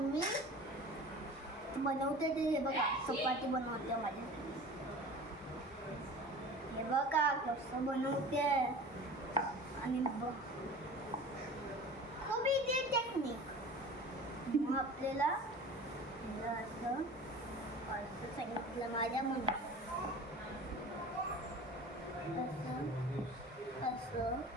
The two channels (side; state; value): both; normal; correlation 0.39